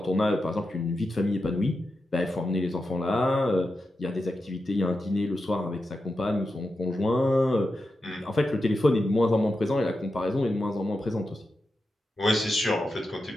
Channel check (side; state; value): both; normal; correlation 0.89